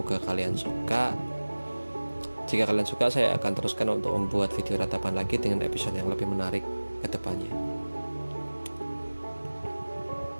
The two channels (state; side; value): inverted; both; correlation -1.00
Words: kalian suka. Jika kalian suka, saya akan teruskan untuk membuat video ratapan lagi dengan episode yang lebih menarik ke depannya.